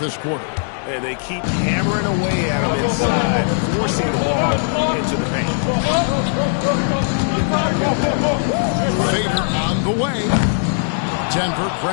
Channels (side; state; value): right; silent; 67 dB below the other